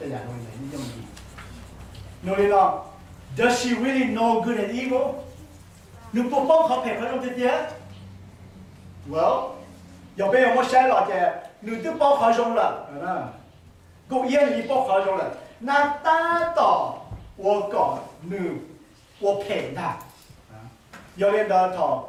亚洲人用的。那里呢 ，Does she really know good and evil？ 你不帮他配合用这些 ？Well， 要不然我写了的，你都帮他用了，够眼里帮他用了，那达到我讲你，我陪他，要领导他，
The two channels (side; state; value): both; identical; correlation 1.00